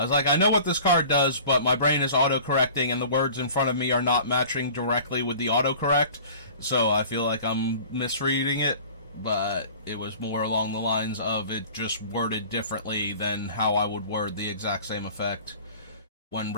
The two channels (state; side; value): inverted; both; correlation -0.44